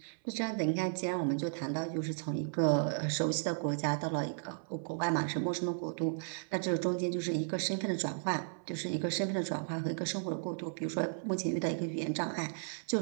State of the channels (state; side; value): silent; left; 55 dB below the other